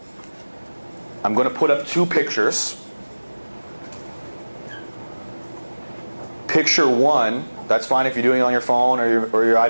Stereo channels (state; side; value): inverted; both; correlation -1.00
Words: I'm going to put up 2 pictures. Picture 1, that's fine if you're doing it on your phone or your